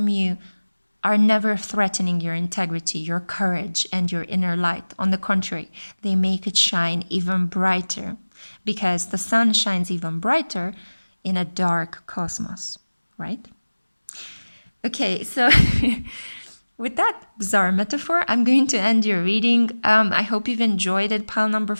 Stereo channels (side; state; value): both; inverted; correlation -1.00